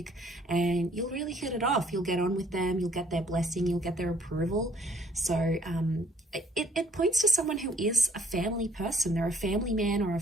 and you'll really hit it off. You'll get on with them. You'll get their blessing. You'll get their approval. So it points to someone who is a family person. They're a family man or a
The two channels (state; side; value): normal; both; correlation 0.63